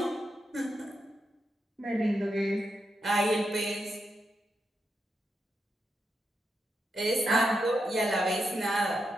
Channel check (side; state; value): both; normal; correlation 0.85